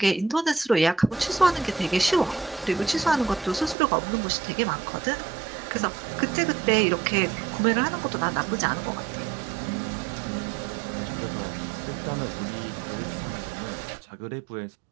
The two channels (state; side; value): drops out; left; at 3.8 s